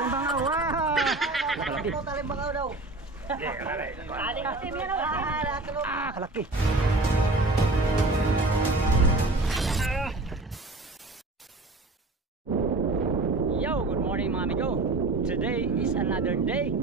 bangaw. Kalaki. Taling bangaw daw. Kalaki. Yo, good morning mga amigo. Today is another day.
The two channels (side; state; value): left; quieter; 3.1 dB